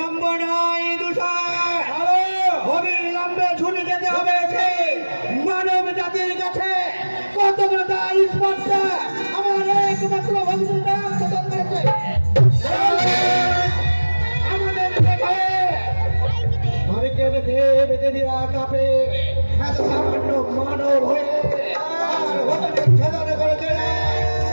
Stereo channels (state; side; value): inverted; both; correlation -1.00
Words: নয় দূষণ, অবিলম্বে ছুটে যেতে হবে সেই মানব জাতির কাছে। কত বড় তার স্পর্শা আমার একমাত্র ভগ্নীর নাম প্রদান করেছে।